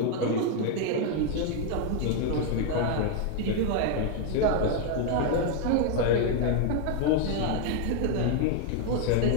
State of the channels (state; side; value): different; both; correlation 0.00